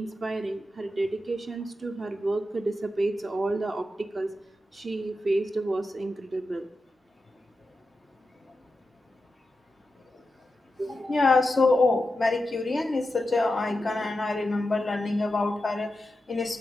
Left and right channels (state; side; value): normal; both; correlation 0.90